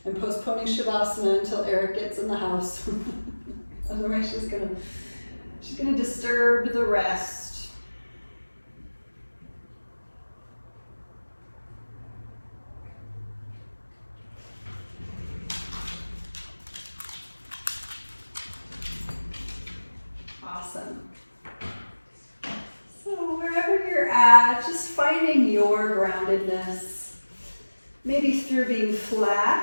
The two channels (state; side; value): inverted; both; correlation -1.00